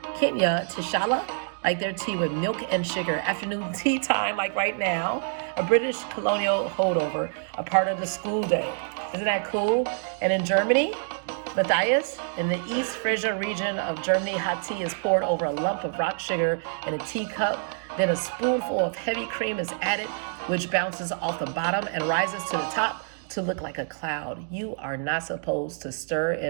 Kenya, Tishala like their tea with milk and sugar. Afternoon tea time, like right now, a British colonial holdover, a part of the school day. Isn't that cool? And in Germany, Matthias, in the East Frisia region of Germany, hot tea is poured over a lump of rock sugar in a teacup. Then a spoonful of heavy cream is added, which bounces off the bottom and rises to the top to look like a cloud. You are not supposed to stir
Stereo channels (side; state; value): left; silent; digital silence